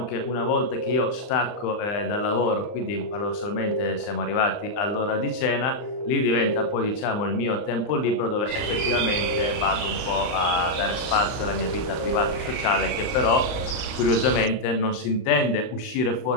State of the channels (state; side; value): late; right; 39 ms